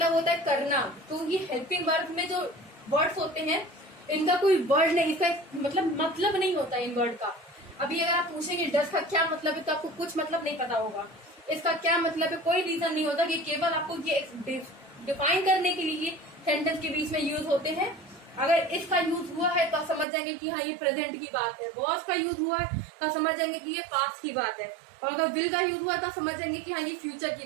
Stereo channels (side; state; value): left; drops out; at 20.1 s